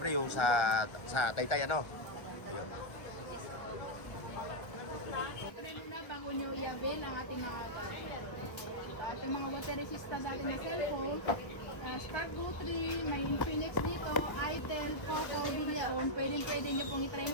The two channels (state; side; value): late; right; 1.2 ms